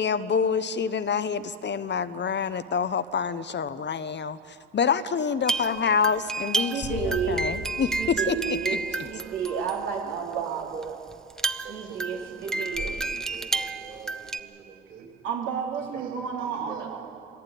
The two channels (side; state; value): both; normal; correlation 0.14